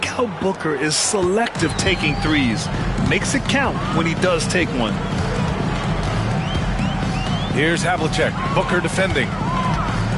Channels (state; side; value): identical; both; correlation 1.00